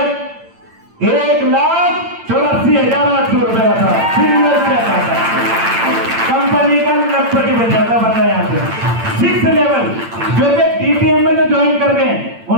1,84,800 रुपए का था, सिंगल चेक आता है। कंपनी का लखपति बन जाता बंदा यहाँ से। 6th लेवल जो कि डीटीएम में जो ज्वाइन कर गए,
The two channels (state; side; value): late; left; 8.8 ms